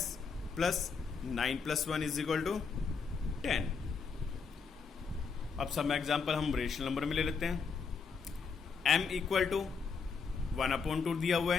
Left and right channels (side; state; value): right; quieter; 5.4 dB